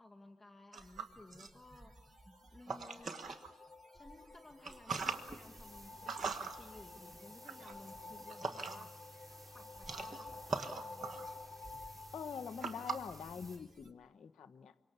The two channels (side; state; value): both; normal; correlation 0.70